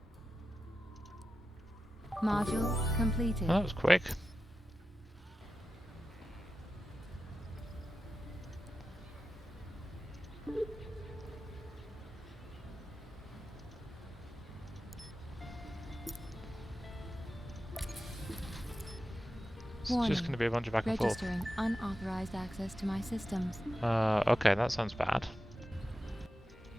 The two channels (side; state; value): both; normal; correlation 0.92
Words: Module completed. That was quick. It's just going to be a bunch of back and forth. Registering unauthorized access to my systems. Okay, that sounds bad.